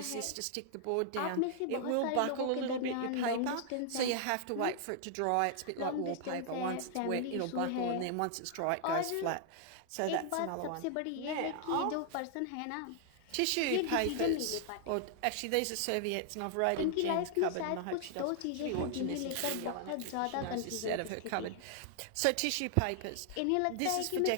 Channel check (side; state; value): both; different; correlation 0.00